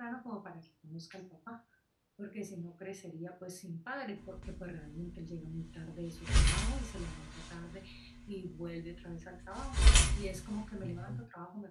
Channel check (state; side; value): identical; both; correlation 1.00